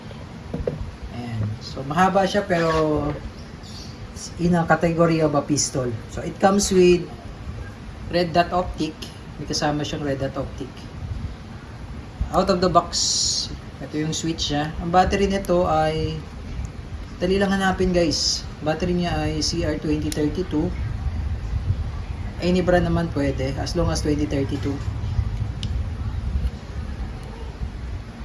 So mahaba siya pero in a category of a pistol. So it comes with red dot optic. May kasama siyang red dot optic. Out of the box, ito yung switch niya. Ang battery nito ay dali lang hanapin guys. Battery niya ay CR2032. Any brand naman pwede as long as 2032.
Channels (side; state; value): both; identical; correlation 1.00